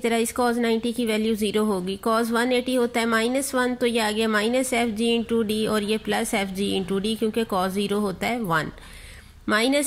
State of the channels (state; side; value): identical; both; correlation 1.00